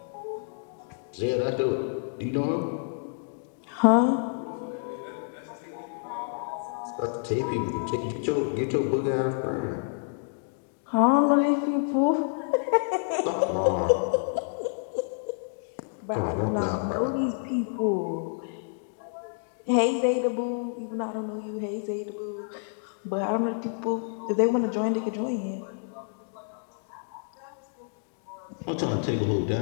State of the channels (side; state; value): right; silent; digital silence